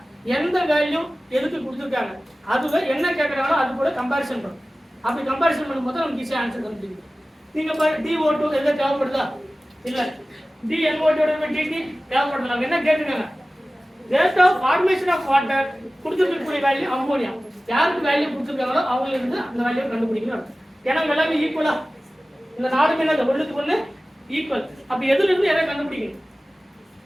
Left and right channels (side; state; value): both; normal; correlation 0.97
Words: எந்த வேல்யூ எதுக்கு கொடுத்திருக்காங்க அதுல என்ன கேக்குறாங்களோ அது கூட கம்பேரிசன் பண்ணும். அப்படி கம்பேரிசன் பண்ணும்போது நமக்கு ஈஸியா ஆன்சர் கண்டுபிடிக்கும். நீங்க DO2 எதை தேவைப்படுதா? இல்ல. DNO divided by DT தேவைப்படுதா? என்ன கேக்குறாங்க? rate of formation of water கொடுத்திருக்கக்கூடிய வேல்யூ அம்மோனியா. யாருக்கு வேல்யூ கொடுத்திருக்காங்களோ அவங்கள இருந்து அந்த வேல்யூ கண்டுபிடிக்கணும். ஏன்னா எல்லாமே ஈக்குவலா. இந்த நாலு மேல ஒண்ணுக்கு ஒண்ணு ஈக்குவல். அப்ப எதுல இருந்து எதை கண்டுபிடிக்கணும்?